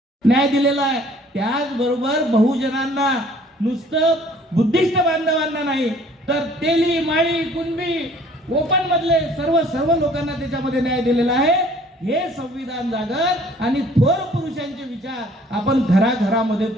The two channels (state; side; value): normal; both; correlation 0.55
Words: न्याय दिलेला आहे। त्याचबरोबर बहुजनांना नुसतं बुद्धिस्ट बांधवांना नाही तर तेली माळी कुणबी कोकण मधले सर्व लोकांना त्याच्यामध्ये न्याय दिलेला आहे। हे संविधान जागर आणि थोर पुरुषांचे विचार आपण घराघरामध्ये